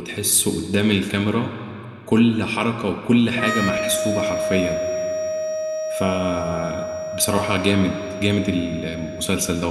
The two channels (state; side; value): identical; both; correlation 1.00